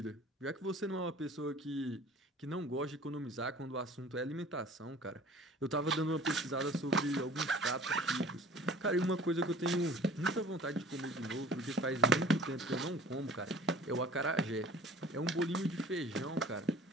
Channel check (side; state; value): both; normal; correlation 0.46